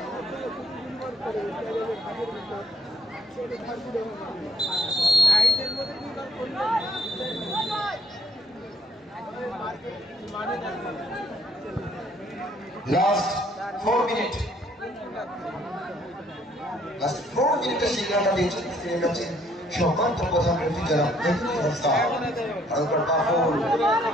লাস্ট 4 মিনিটের সিগন্যালটা দিয়েছেন সম্মানিত প্রধান অতিথি জনাব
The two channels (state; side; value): normal; both; correlation 0.65